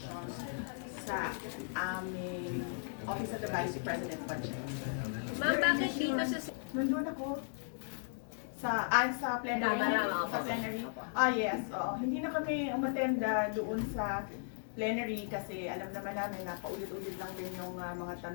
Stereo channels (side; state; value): right; silent; digital silence